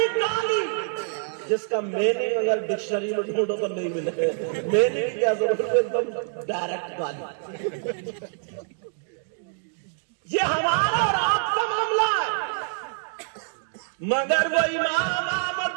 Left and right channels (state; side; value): silent; left; digital silence